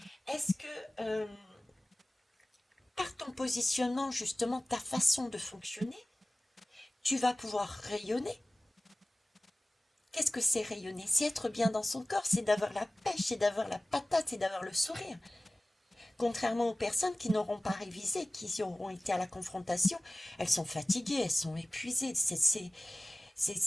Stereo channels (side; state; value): both; normal; correlation 0.97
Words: Est-ce que par ton positionnement, justement, ta façon de fonctionner, tu vas pouvoir rayonner? Qu'est-ce que c'est rayonner? C'est être bien dans son corps, c'est d'avoir la pêche, c'est d'avoir la patate, c'est d'avoir le sourire. Contrairement aux personnes qui n'auront pas révisé, qui auront été à la confrontation, elles sont fatiguées, elles sont épuisées, c'est